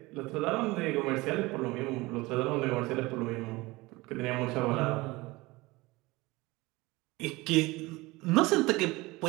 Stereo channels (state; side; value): quieter; left; 21.7 dB